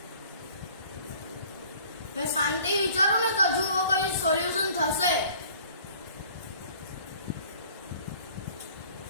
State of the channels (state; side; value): inverted; both; correlation -0.52